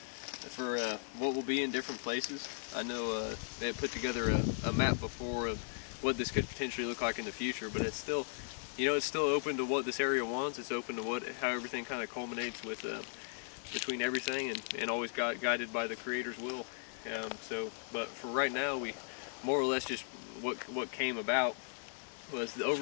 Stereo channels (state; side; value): silent; right; digital silence